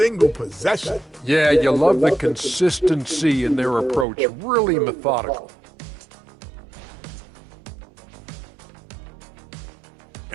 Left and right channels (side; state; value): left; drops out; at 4.0 s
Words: possession. Yeah, you love the consistency in their approach. Really methodical.